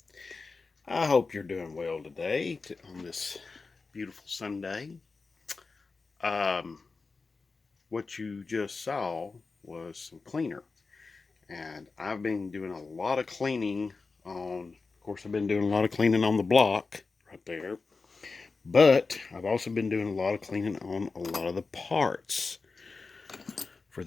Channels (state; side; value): quieter; right; 4.2 dB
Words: I hope you're doing well today on this beautiful Sunday. Um, what you just saw was some cleaner, and I've been doing a lot of cleaning on. Of course, I've been doing a lot of cleaning on the block right there, but I've also been doing a lot of cleaning on a lot of the parts for